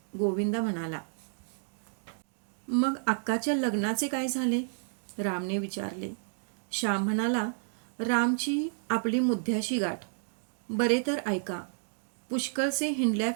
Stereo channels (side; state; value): left; silent; digital silence